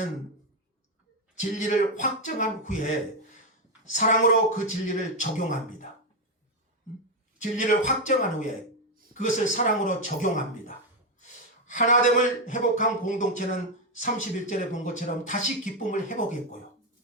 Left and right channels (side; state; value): both; normal; correlation 0.05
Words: 진리를 확정한 후에 사랑으로 그 진리를 적용합니다. 진리를 확정한 후에 그것을 사랑으로 적용합니다. 하나됨을 회복한 공동체는 31절에 본 것처럼 다시 기쁨을 회복했고요.